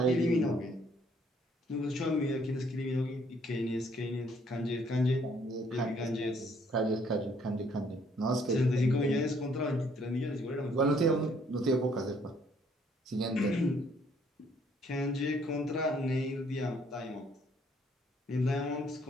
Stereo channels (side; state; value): both; normal; correlation 0.65